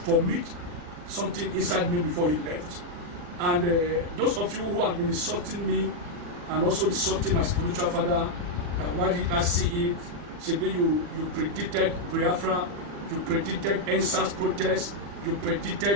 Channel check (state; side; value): late; left; 40 ms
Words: formit something inside me before he left. And those of you who have been insulting me and also insulting my spiritual father, why did I see it? Maybe you predicted Biafra, you predicted NSAS protest, you